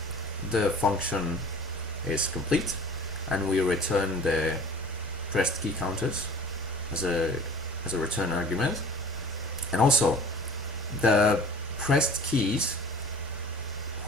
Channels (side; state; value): both; normal; correlation 0.45